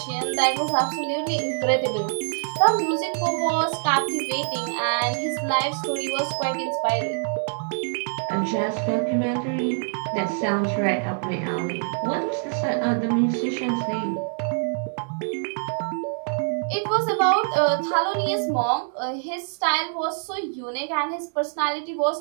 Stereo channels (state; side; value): silent; left; digital silence